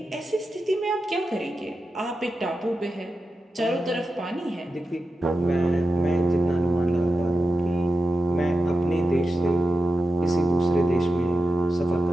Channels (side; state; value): both; normal; correlation 0.91